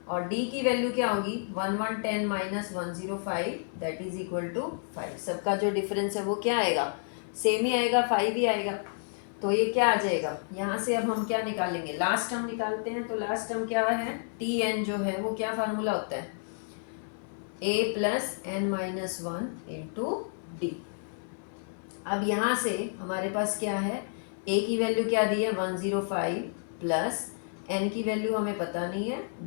और d की वैल्यू क्या होगी, 1110 minus 105 that is equal to 5। सबका जो डिफरेंस है वो क्या आएगा, सेम ही आएगा, 5 ही आएगा। तो ये क्या आ जाएगा, यहाँ से अब हम क्या निकालेंगे, लास्ट टर्म निकालते हैं। तो लास्ट टर्म क्या है, टी एन जो है वो क्या फार्मूला होता है, a plus N minus 1 into D. अब यहाँ से हमारे पास क्या है, a की वैल्यू क्या दी है, 105 प्लस n की वैल्यू हमें पता नहीं है,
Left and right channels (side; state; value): right; silent; 58 dB below the other